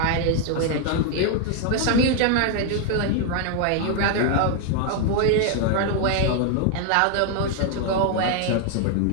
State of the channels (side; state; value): both; different; correlation 0.00